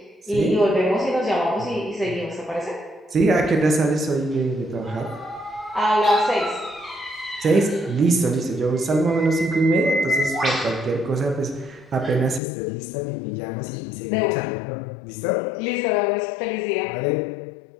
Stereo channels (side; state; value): right; drops out; at 12.4 s